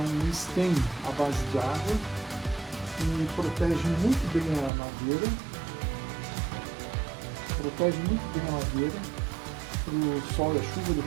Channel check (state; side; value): drops out; left; at 4.7 s